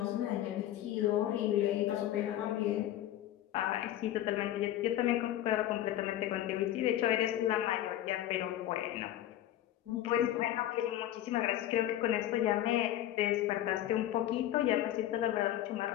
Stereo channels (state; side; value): quieter; right; 12.9 dB